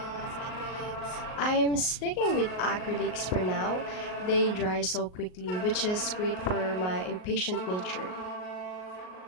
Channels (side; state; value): right; late; 38 ms